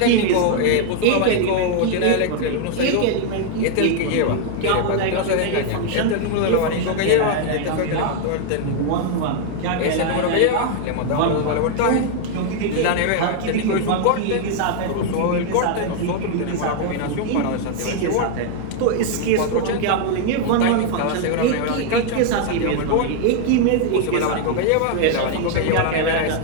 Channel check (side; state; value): both; different; correlation 0.00